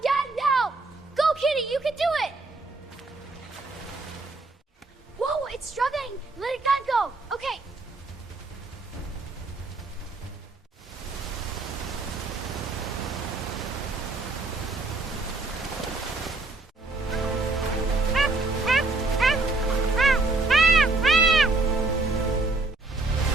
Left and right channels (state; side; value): quieter; left; 3.4 dB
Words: get it now! Go, Kitty, you can do it! Whoa, it's struggling! Let it go! Okay.